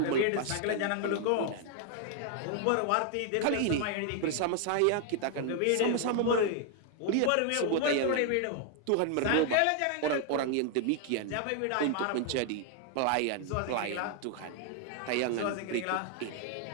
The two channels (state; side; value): different; both; correlation 0.00